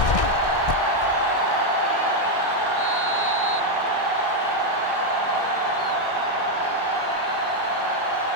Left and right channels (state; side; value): late; right; 1.6 ms